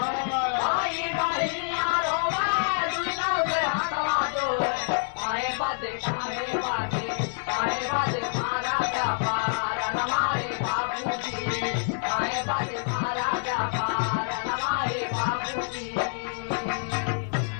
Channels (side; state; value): right; silent; digital silence